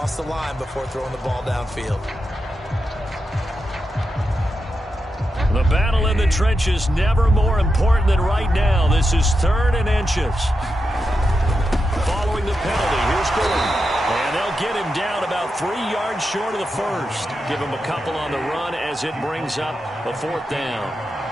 the line before throwing the ball downfield. The battle in the trenches never more important than right now. This is 3rd and inches. Following the penalty, here's Gordon. And they'll get him down about 3 yards short of the first. Give him a couple on the run as it brings up a 4th down.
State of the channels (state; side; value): normal; both; correlation 0.88